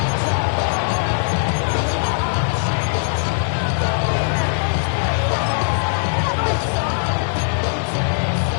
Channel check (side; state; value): right; silent; digital silence